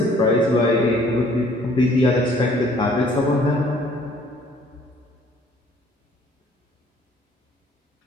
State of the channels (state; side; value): normal; both; correlation 0.58